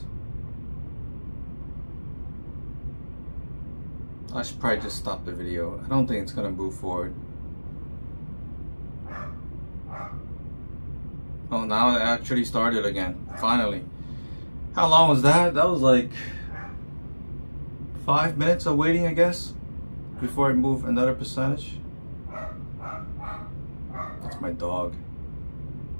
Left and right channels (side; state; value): both; inverted; correlation -1.00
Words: I should probably just stop the video. I don't think it's gonna move forward. Oh, now it actually started again, finally. How long was that? That was like 5 minutes of waiting, I guess, before it moved another percentage. That's my dog.